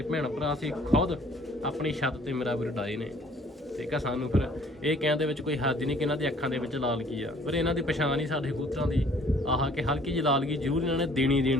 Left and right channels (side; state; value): both; normal; correlation 0.56